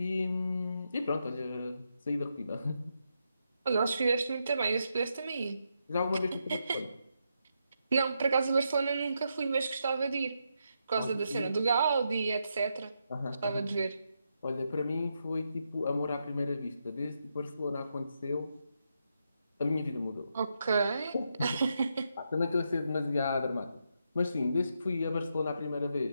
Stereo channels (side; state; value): both; inverted; correlation -0.82